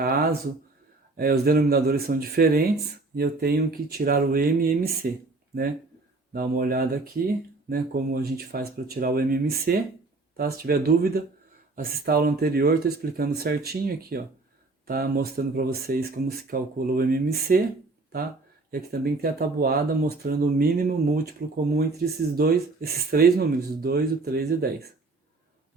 os denominadores são diferentes e eu tenho que tirar o M e MC, né? Dá uma olhada aqui, né? Como a gente faz para tirar o M e MC, tá? Se tiver dúvida, assista a aula anterior, estou explicando certinho aqui, ó. Tá mostrando para vocês como se calcula o MMC, tá? E aqui também tem a tabuada mostrando o mínimo múltiplo comum entre esses três números, o 2, o 3 e o 10.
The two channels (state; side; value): quieter; left; 3.4 dB